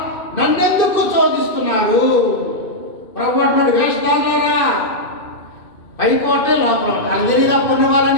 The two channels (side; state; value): right; late; 2.5 ms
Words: నన్నెందుకు శోధిస్తున్నారు? ప్రభు అంటున్నాడు, వేషధారులారా, పైకోటే లోపల వాళ్ళకి తెలియదా పన్ను